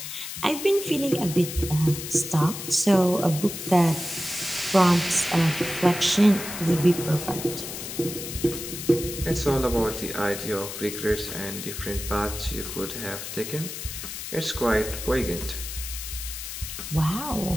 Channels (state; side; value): noise; left; hiss, 8 dB below the sound